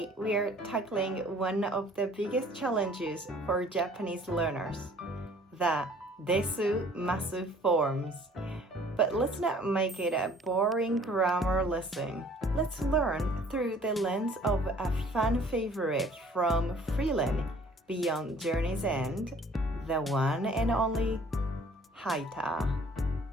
we are tackling one of the biggest challenges for Japanese learners, the Desu-Masu forms. But let's not make it a boring grammar lesson. Let's learn through the lens of a fan favorite from Freiren, Beyond Journey's End, the one and only Heiter.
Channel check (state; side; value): normal; both; correlation 0.54